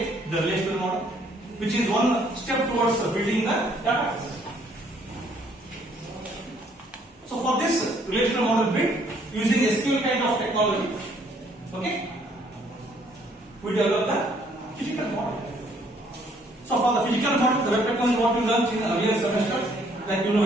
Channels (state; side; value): normal; both; correlation 0.64